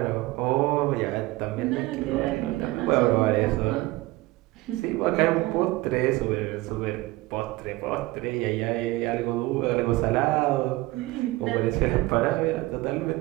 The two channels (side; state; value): left; quieter; 19.9 dB